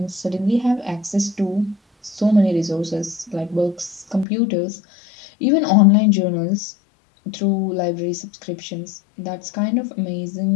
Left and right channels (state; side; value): drops out; right; at 4.2 s